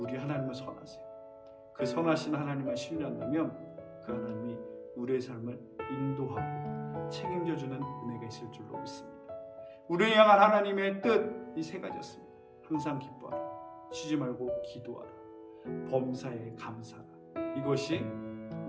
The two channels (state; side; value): identical; both; correlation 1.00